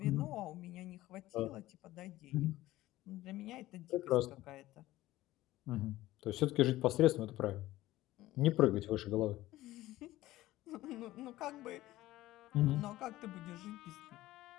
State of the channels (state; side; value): quieter; right; 16.3 dB